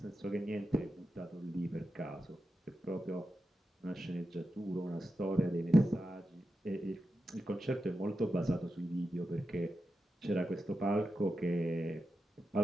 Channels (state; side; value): normal; both; correlation 0.90